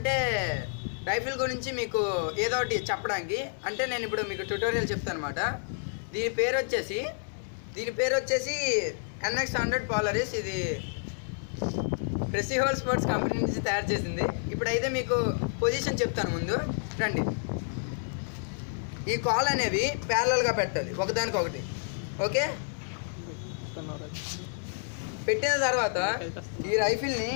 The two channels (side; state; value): right; silent; digital silence